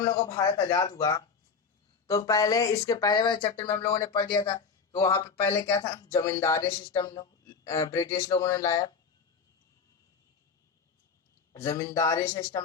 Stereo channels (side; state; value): right; quieter; 5.6 dB